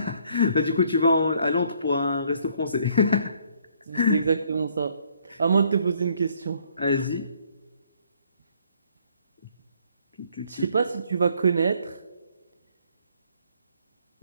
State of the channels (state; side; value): inverted; both; correlation -0.64